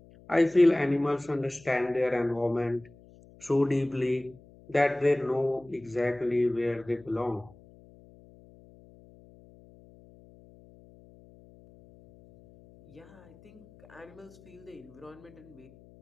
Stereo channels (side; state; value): left; noise; hum, 24 dB below the sound